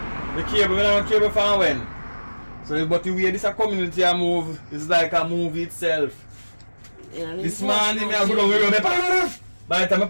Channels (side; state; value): both; inverted; correlation -1.00